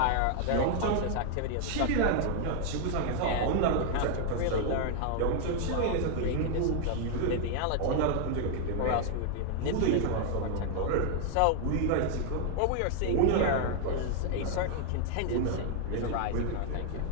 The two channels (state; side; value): different; both; correlation 0.00